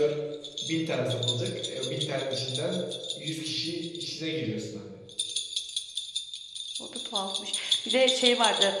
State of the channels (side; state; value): both; identical; correlation 1.00